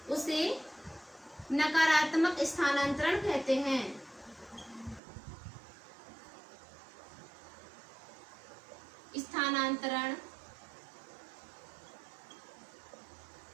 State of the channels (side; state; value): left; drops out; at 5.0 s